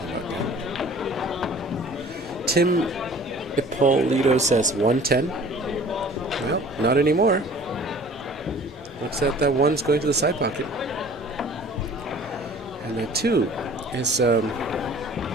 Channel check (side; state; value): both; normal; correlation 0.48